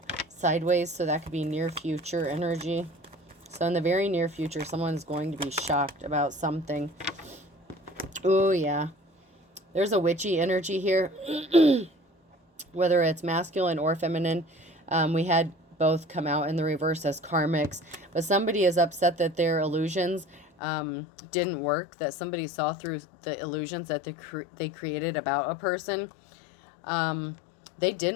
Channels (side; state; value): right; drops out; at 20.5 s